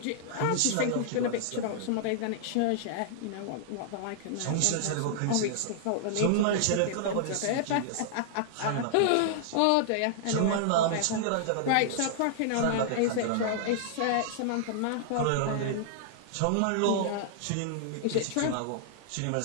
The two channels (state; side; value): different; both; correlation -0.01